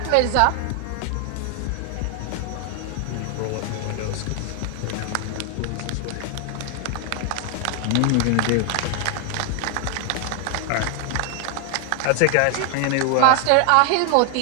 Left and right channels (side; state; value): both; different; correlation 0.00